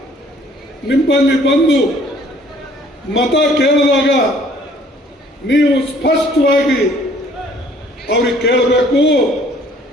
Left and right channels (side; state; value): both; normal; correlation 0.58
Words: ನಿಮ್ಮಲ್ಲಿ ಬಂದು ಮತ ಕೇಳಿದಾಗ ನೀವು ಸ್ಪಷ್ಟವಾಗಿ ಅವ್ರಿಗೆ ಕೇಳಬೇಕು,